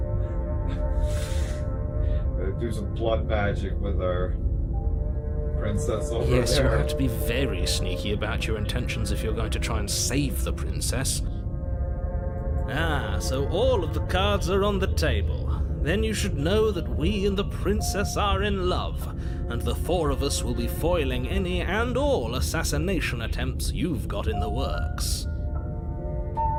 Do some blood magic with our princess over there. Yes, you'll have to be very sneaky about your intentions if you're going to try and save the princess. Ah, so all of the cards are on the table. Then you should know that we and the princess are in love, and the four of us will be foiling any and all assassination attempts you've got in the works.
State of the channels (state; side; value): identical; both; correlation 1.00